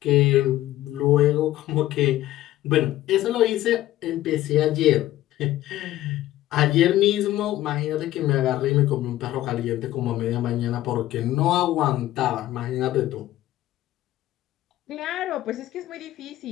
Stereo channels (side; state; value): right; quieter; 14.8 dB